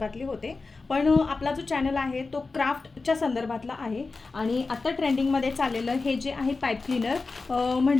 होते, पण आपला जो चॅनल आहे तो क्राफ्टच्या संदर्भातला आहे. आणि आत्ता ट्रेंडिंगमध्ये चाललेलं हे जे आहे पाईप क्लीनर,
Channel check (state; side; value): quieter; right; 3.9 dB